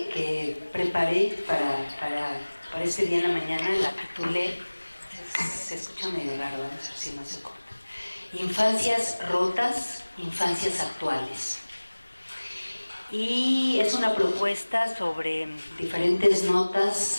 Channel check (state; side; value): inverted; both; correlation -1.00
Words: preparé para este día en la mañana la titulé, se escucha medio raro, vamos a ver si no se corta: Infancias rotas, infancias actuales. Y es una propuesta sobre diferentes